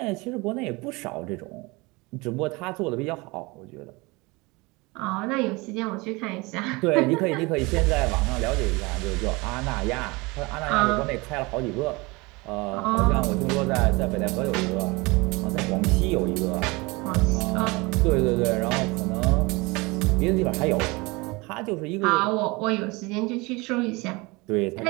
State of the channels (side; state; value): left; quieter; 24.8 dB